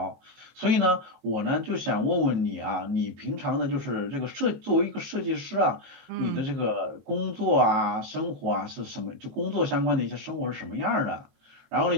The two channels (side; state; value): left; late; 22 ms